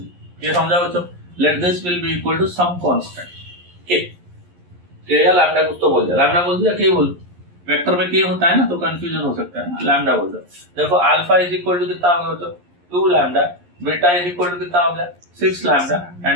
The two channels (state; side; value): late; left; 11 ms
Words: ये समझा बच्चों? Let this will be equal to some constant K या लैम्डा कुछ तो बोल दे, लैम्डा बोल दिया के बोल, वेक्टर में के होता है ना तो कंफ्यूजन हो सकता है ना, लैम्डा बोल दो। देखो अल्फा इज इक्वल टू कितना हो गया बच्चों? 2 lambda, beta is equal to कितना हो गया? 6 lambda